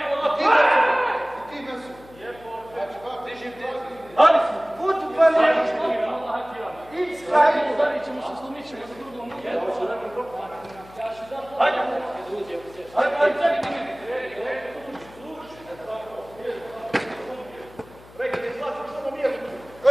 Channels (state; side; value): noise; left; hum, 22 dB below the sound